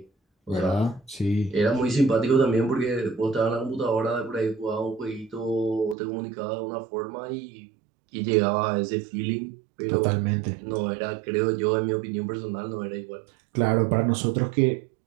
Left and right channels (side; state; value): left; drops out; at 6.0 s